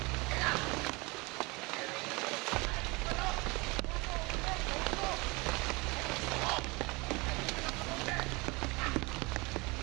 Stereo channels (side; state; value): left; quieter; 25.8 dB